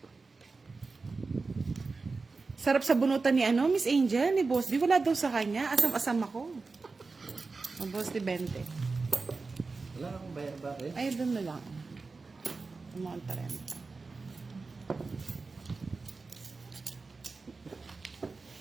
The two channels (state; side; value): quieter; left; 4.1 dB